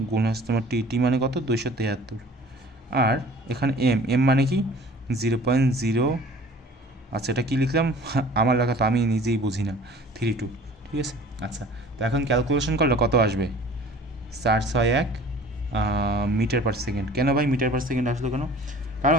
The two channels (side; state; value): both; normal; correlation 0.47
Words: গুণ হচ্ছে তোমার টি মানে কত, 273। আর এখানে এম মানে কি 0.0, আচ্ছা এটা কী লিখলাম আমার লেখা তো আমি নিজেই বুঝি না, 32। ঠিক আছে, আচ্ছা তো এখন ক্যালকুলেশন করলে কত আসবে, 461 মিটার পার সেকেন্ড। কেন ভাই মিটার পার সেকেন্ড আসলো কেন? কারণ